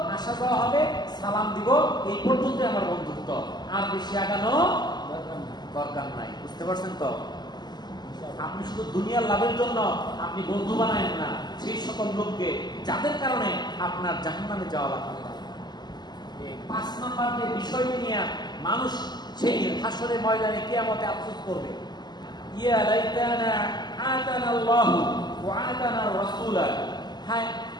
আসা যাওয়া হবে, সালাম দিব, এই পর্যন্ত আমার বন্ধুত্ব, আর বেশি আগানো দরকার নাই। বুঝতে পারছেন তো? আপনি শুধু দুনিয়ার লাভের জন্য আপনি বন্ধু বানায়েন না সেই সকল লোককে যাদের কারণে আপনার জাহান্নামে যাওয়া লাগবে। 5 নম্বর যে বিষয়টি নিয়ে মানুষ সেই হাসরের ময়দানে কিয়ামতে আফসোস করবে, ইয়া লাইতানা আতানা আল্লাহু ওয়া আতানা রাসূলা, হায়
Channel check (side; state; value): right; late; 0.21 ms